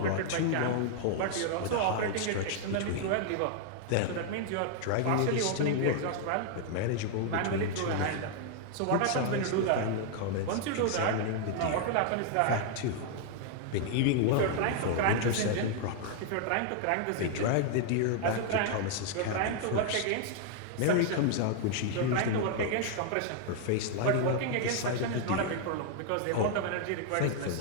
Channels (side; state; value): both; different; correlation 0.00